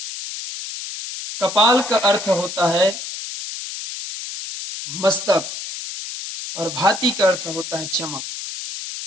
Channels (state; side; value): noise; left; hiss, 8 dB below the sound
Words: कपाल का अर्थ होता है मस्तक और भाति का अर्थ होता है चमक।